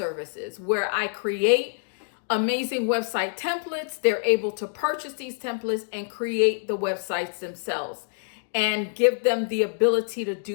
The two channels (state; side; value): silent; right; digital silence